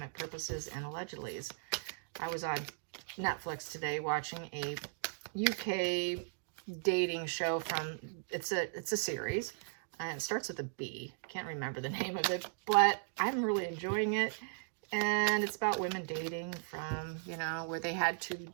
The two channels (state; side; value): silent; left; digital silence